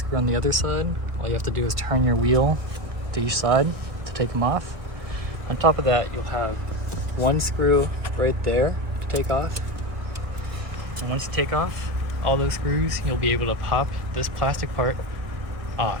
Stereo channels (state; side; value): late; left; 1.6 ms